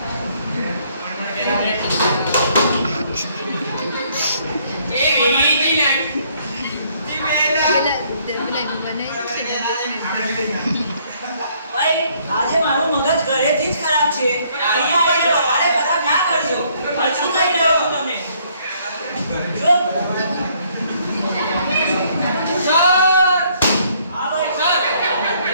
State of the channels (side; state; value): both; inverted; correlation -0.65